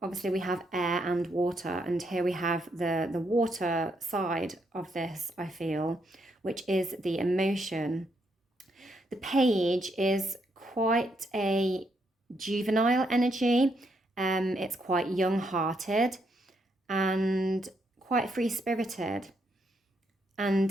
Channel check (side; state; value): both; normal; correlation 0.77